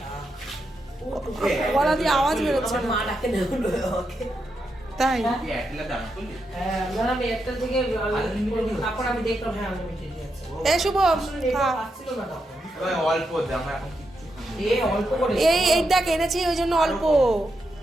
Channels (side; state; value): both; normal; correlation 0.84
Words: গলা দিয়ে আওয়াজ বেরোচ্ছে না, তাই? এই শুভ, এই দেখ এনেছি, ওই জন্য অল্প,